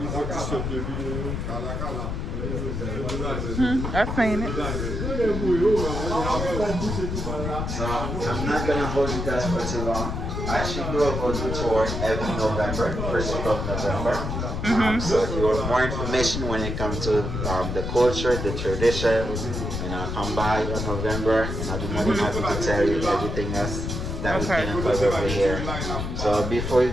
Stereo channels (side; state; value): left; noise; rumble, 3 dB below the sound